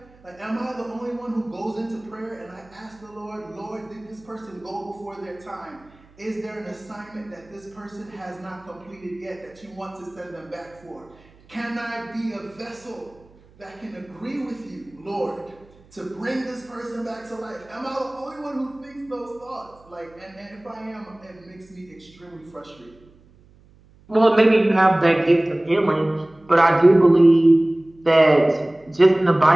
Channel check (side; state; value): right; noise; hum, 28 dB below the sound